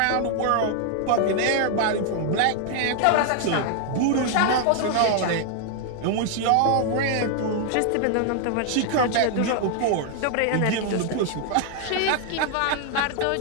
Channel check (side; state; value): both; different; correlation 0.00